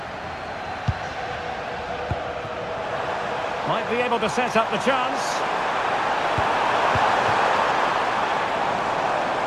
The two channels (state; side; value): identical; both; correlation 1.00